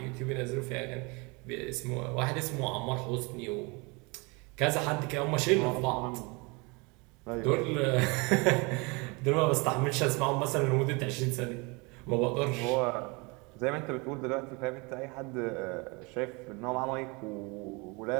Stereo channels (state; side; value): quieter; left; 28.3 dB